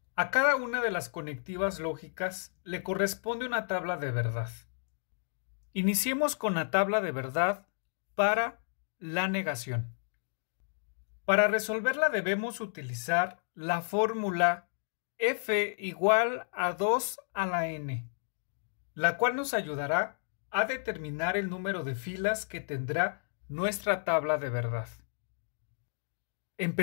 A cada una de las conectivas lógicas le corresponde una tabla de verdad. Iniciemos con la tabla de verdad para la negación. Para resolverla debemos utilizar la fórmula f igual a 2 a la n, la cual nos ayudará a determinar el número de filas que tendrá nuestra tabla de verdad.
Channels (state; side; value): silent; right; digital silence